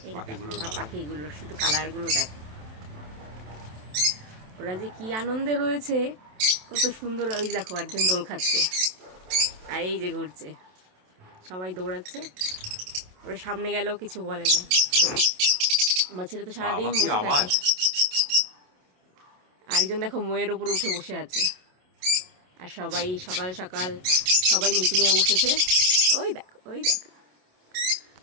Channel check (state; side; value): late; left; 27 ms